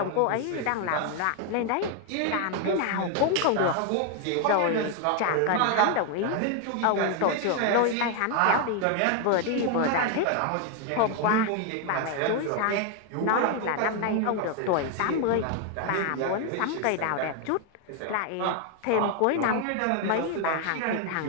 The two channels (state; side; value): different; both; correlation 0.01